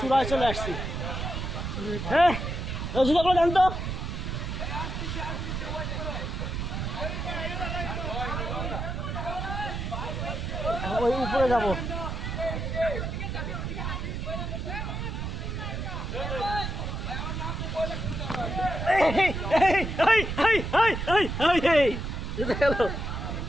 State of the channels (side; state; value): right; noise; rumble, 4 dB below the sound